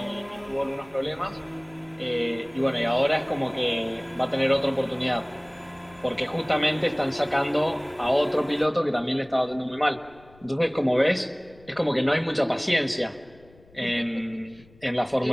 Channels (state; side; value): noise; left; rumble, 26 dB below the sound